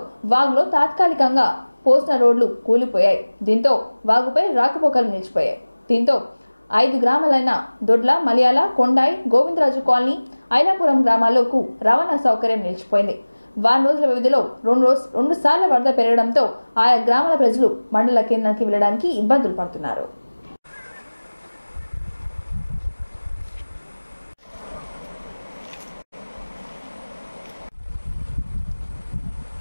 వాగులో తాత్కాలికంగా పోసిన రోడ్లు కూలిపోయాయి. దీంతో వాగుపై రాకపోకలు నిలిచిపోయాయి. దీంతో 5 గ్రామాలైన దొడ్ల, మలయాళ, కొండాయి, గోవిందరాజు కాలనీ, ఐలాపురం గ్రామాలకు రవాణా సౌకర్యం నిలిచిపోయింది. వారం రోజుల వ్యవధిలో 2 సార్లు వరద పెరగడంతో ఆయా గ్రామాల ప్రజలు మండల కేంద్రానికి వెళ్లడానికి ఇబ్బందులు పడుతున్నారు.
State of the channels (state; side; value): inverted; both; correlation -1.00